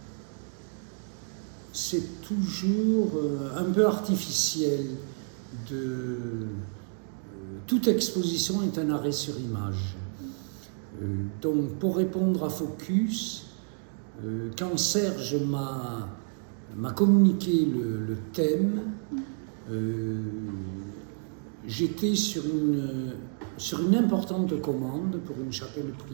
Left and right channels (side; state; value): left; silent; 58 dB below the other